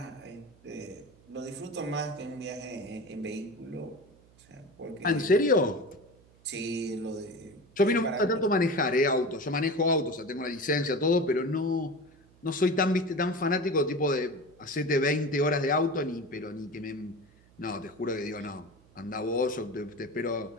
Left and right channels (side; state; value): right; noise; hum, 28 dB below the sound